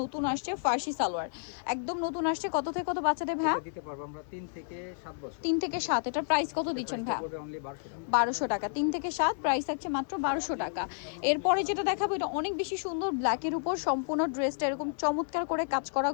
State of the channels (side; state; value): right; silent; 57 dB below the other